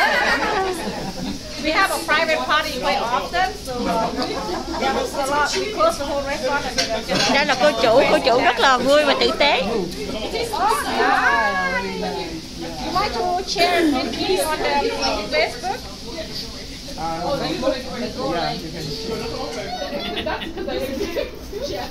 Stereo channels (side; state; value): both; identical; correlation 1.00